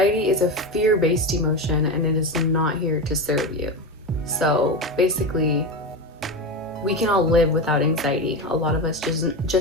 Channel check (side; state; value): both; normal; correlation 0.19